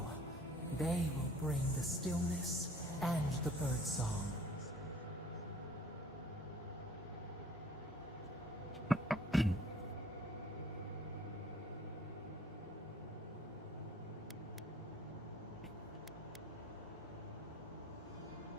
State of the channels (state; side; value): normal; both; correlation 0.54